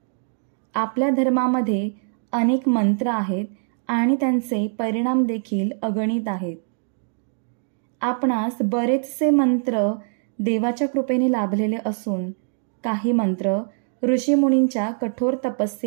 आपल्या धर्मामध्ये अनेक मंत्र आहेत आणि त्यांचे परिणाम देखील अगणित आहेत. आपणास बरेचसे मंत्र देवाच्या कृपेने लाभलेले असून काही मंत्र ऋषीमुनींच्या कठोर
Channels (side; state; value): left; silent; digital silence